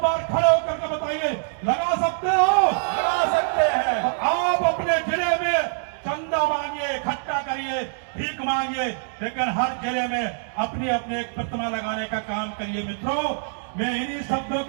बार खड़े होकर के बताइए, लगा सकते हो? लगा सकते हैं। तो आप अपने जिले में चंदा मांगिए, इकट्ठा करिए, भीख मांगिए, लेकिन हर जिले में अपनी अपनी एक प्रतिमा लगाने का काम करिए। मित्रों मैं इन्हीं शब्दों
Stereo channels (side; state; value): left; silent; 62 dB below the other